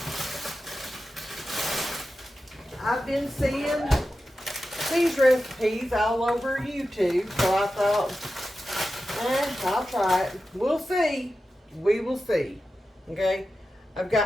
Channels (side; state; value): both; normal; correlation 0.92